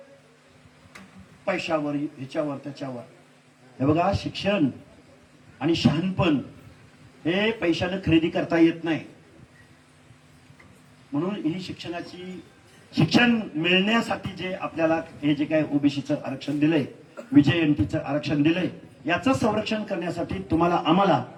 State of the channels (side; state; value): both; identical; correlation 1.00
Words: पैशावर, ह्याच्यावर, त्याच्यावर. हे बघा, शिक्षण आणि शहाणपण हे पैशानं खरेदी करता येत नाही. म्हणून ही शिक्षण मिळण्यासाठी जे आपल्याला हे जे काय ओबीसीचं आरक्षण दिलंय, विजयंतीचं आरक्षण दिलंय, याचं संरक्षण करण्यासाठी तुम्हाला आम्हाला